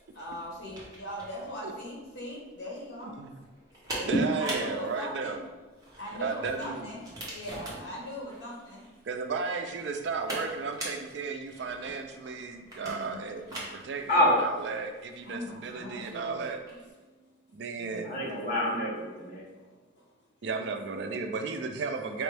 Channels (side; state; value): both; normal; correlation 0.02